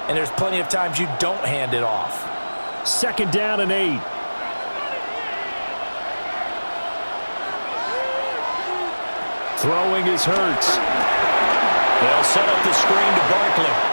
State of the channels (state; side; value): inverted; both; correlation -1.00